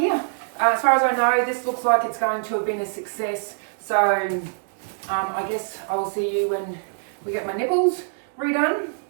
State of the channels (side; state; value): left; silent; digital silence